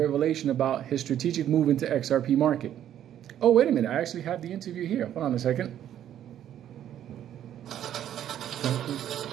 about his strategic move into XRP market. Oh, wait a minute. I actually have the interview here. Hold on a second.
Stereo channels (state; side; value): quieter; left; 10.8 dB